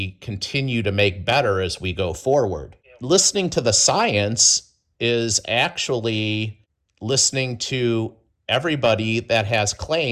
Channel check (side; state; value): both; identical; correlation 1.00